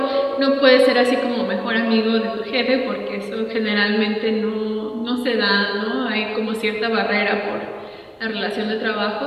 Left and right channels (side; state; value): both; identical; correlation 1.00